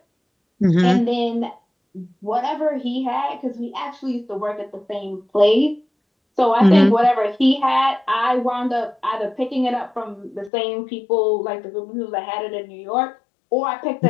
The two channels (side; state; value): right; drops out; at 10.5 s